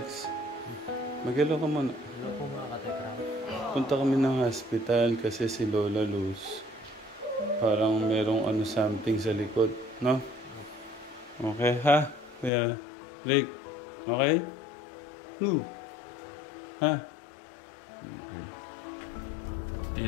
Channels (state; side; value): drops out; right; at 12.5 s